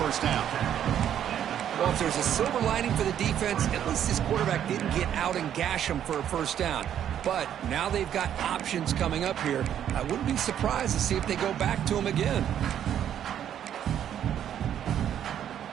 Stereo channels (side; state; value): left; quieter; 10.0 dB